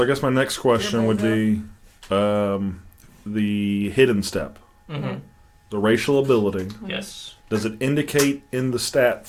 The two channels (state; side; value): identical; both; correlation 1.00